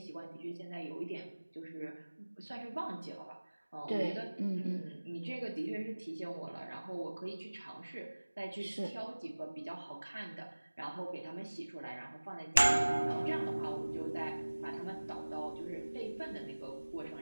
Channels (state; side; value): inverted; both; correlation -1.00